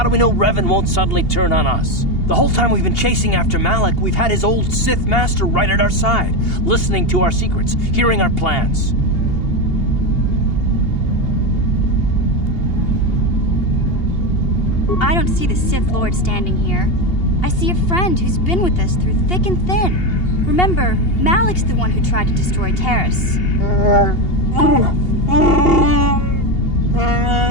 do we know Revan won't suddenly turn on us? The whole time we've been chasing after Malak, we've had his old Sith master right at our side, listening to our secrets, hearing our plans. I don't see the Sith Lord standing here. I see a friend who's been with us through thick and thin. Remember, Malik's the one who tried to destroy Terrace.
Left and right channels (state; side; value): late; right; 2.8 ms